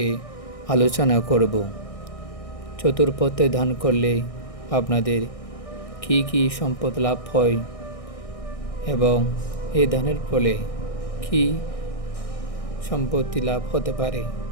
আলোচনা করব। চতুর্পথে দান করলে আপনাদের কি কি সম্পদ লাভ হয় এবং এই দানের ফলে কি সম্পত্তি লাভ হতে পারে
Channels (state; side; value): late; right; 1.6 ms